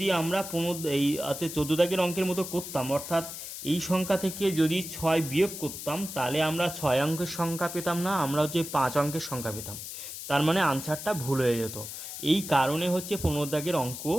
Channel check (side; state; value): left; noise; hiss, 9 dB below the sound